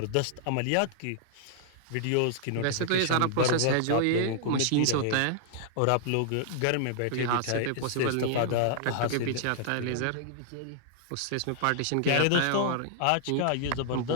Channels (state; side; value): different; both; correlation -0.01